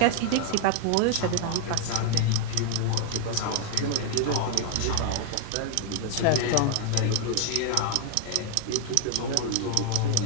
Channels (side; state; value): both; different; correlation 0.00